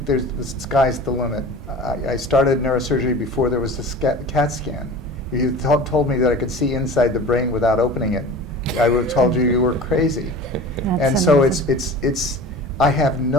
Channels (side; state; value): both; normal; correlation 0.37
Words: the sky's the limit. I started neurosurgery before there was a CAT scan. If you told me that I could see inside the brain without opening it, I would have told you were crazy. And so I have